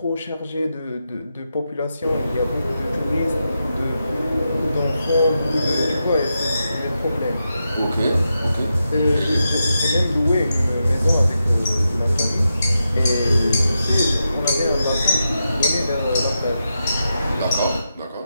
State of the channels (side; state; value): both; inverted; correlation -0.87